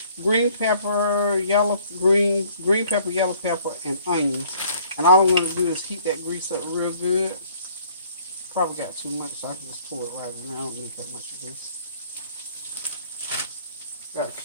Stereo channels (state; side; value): inverted; both; correlation -0.59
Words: Green pepper, yellow pepper, and onions. And all I'm going to do is heat that grease up real good. Probably got too much, so I can just pour it right now. I don't need that much grease. Got